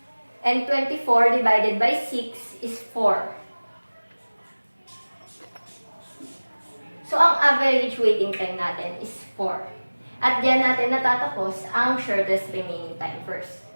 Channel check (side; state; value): both; inverted; correlation -1.00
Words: And 24 divided by 6 is 4. So, ang average waiting time natin is 4. At diyan natin natatapos ang shortest remaining time first.